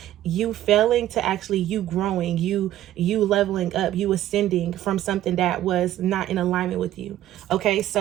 you failing to actually you growing, you leveling up, you ascending from something that was not in alignment with you. Okay,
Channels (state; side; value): quieter; left; 13.3 dB